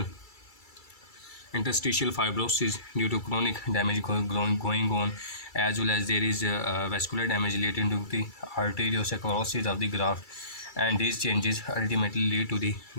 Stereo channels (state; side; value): late; right; 2.3 ms